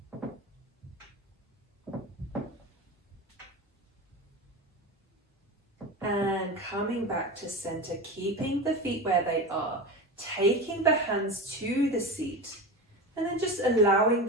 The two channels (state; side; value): normal; both; correlation 0.25